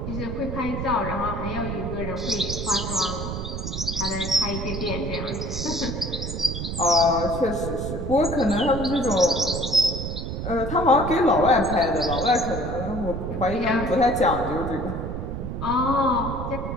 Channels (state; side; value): noise; right; rumble, 5 dB below the sound